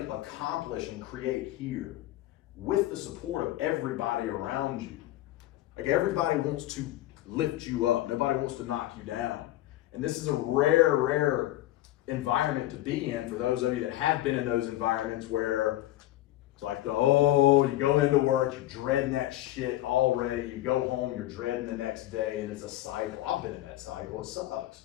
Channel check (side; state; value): right; quieter; 15.2 dB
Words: accomplish and create here with the support of everybody around you. Like, everybody wants to lift you up. Nobody wants to knock you down. And this is a rare environment to be in for those of you that have been in those environments where it's like, you go into work, you're dreading that shit already. You go home, you're dreading the next day, and it's a cycle. I've been in that cycle. It sucks.